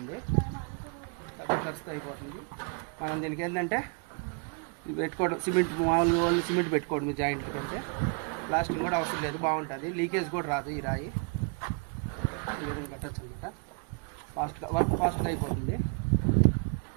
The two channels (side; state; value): left; quieter; 36.4 dB